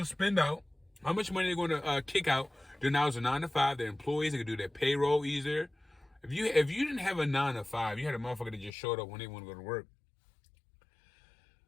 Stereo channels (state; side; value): drops out; right; at 8.7 s